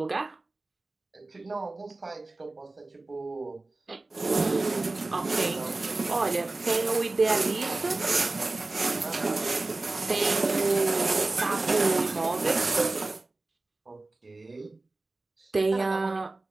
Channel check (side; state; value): left; quieter; 3.2 dB